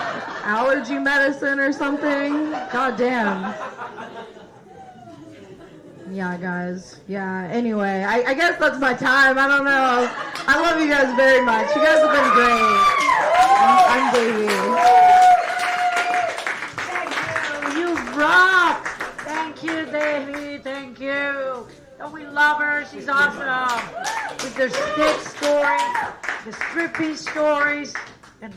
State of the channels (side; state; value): both; identical; correlation 1.00